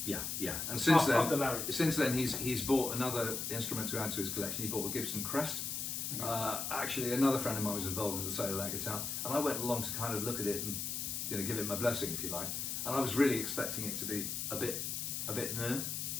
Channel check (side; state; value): left; noise; hiss, 3 dB below the sound